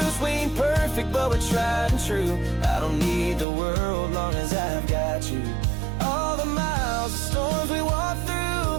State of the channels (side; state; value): left; drops out; at 3.5 s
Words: We ain't perfect, but we're tried and true. I don't need the world long as I've got you. All the miles, the storms we walked